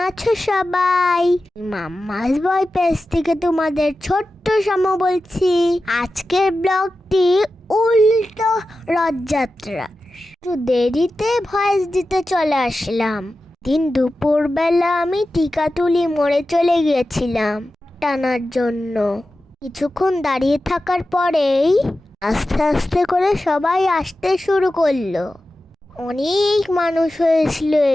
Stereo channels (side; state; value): both; normal; correlation 0.93